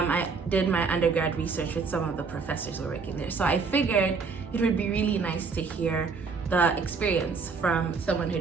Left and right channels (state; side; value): quieter; left; 4.9 dB